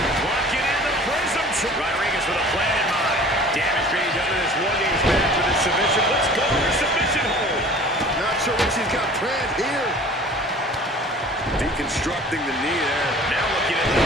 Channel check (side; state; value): both; normal; correlation 0.46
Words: she's got planned here. Deconstructing the knee there. Now looking at the